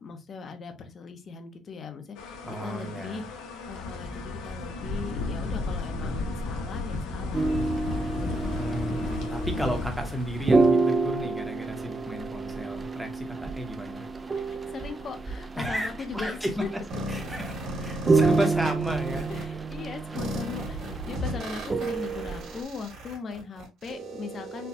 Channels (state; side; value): normal; both; correlation 0.79